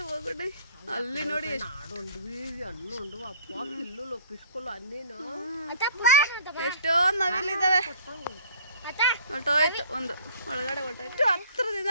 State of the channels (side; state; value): both; inverted; correlation -0.50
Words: బాగుండే. అల్లి నోడి ಎಷ್ಟೋ ನವಿಲಿದ್ದಾವೆ. ಹೊರಟೋಯ್ತು ಒಂದು ಒಳಗಡೆ ಹೊರಟೋಯ್ತು. ಹತ್ರದಿಂದ